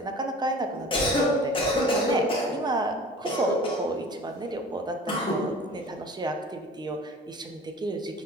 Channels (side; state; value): both; normal; correlation 0.42